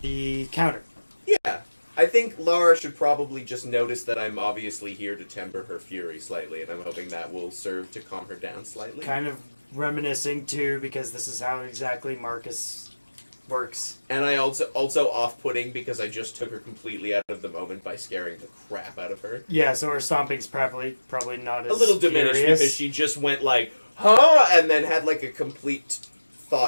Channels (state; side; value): inverted; both; correlation -1.00